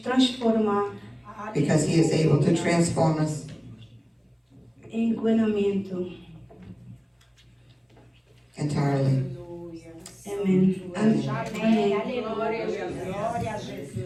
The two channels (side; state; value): both; identical; correlation 1.00